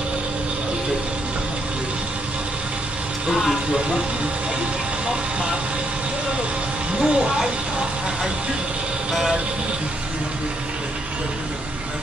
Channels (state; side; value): normal; both; correlation 0.74